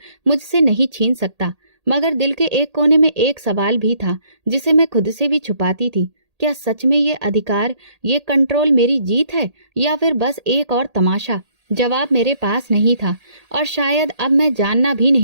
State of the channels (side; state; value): left; late; 1.8 ms